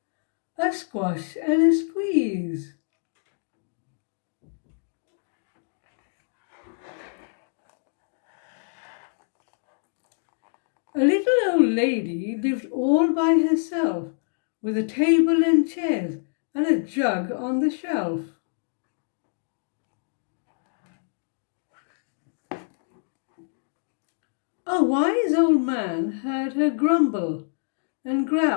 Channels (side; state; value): right; silent; digital silence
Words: A Squash and a Squeeze. A little old lady lived all by herself, with a table and chairs and a jug on the shelf. A wise old man heard her grumble and